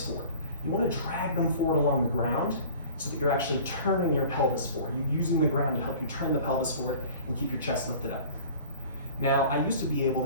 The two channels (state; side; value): inverted; both; correlation -0.44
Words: forward. You want to drag them forward along the ground so that you're actually turning your pelvis forward. You're using the ground to help you turn the pelvis forward and keep your chest lifted up. Now, I used to be able